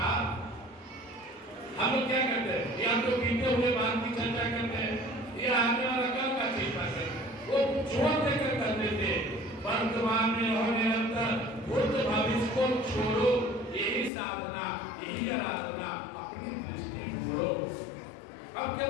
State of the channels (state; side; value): drops out; right; at 14.1 s